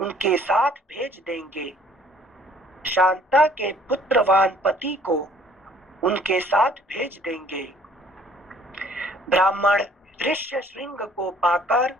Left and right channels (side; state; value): both; normal; correlation 0.58